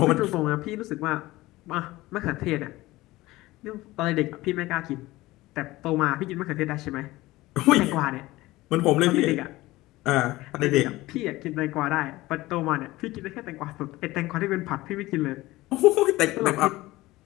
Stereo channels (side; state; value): right; quieter; 18.6 dB